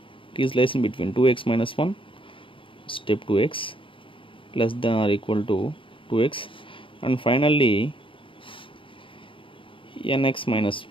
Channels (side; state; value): right; late; 0.25 ms